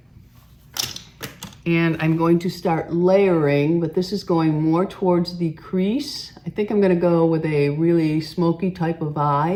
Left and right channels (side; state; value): both; identical; correlation 1.00